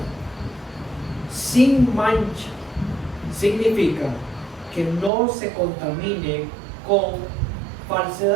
Sin mancha significa que no se contamine con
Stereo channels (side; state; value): left; drops out; at 5.1 s